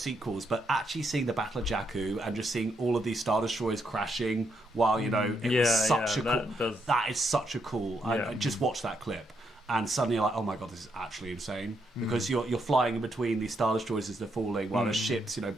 but actually seeing the Battle of Jakku and just seeing all of these Star Destroyers crashing while, you know, it was such a cool... That is such a cool... I just watched that clip. And suddenly you're like, oh my god, this is actually insane. Because you're flying in between these Star Destroyers as they're falling while there's ships, you know,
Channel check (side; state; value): both; normal; correlation 0.78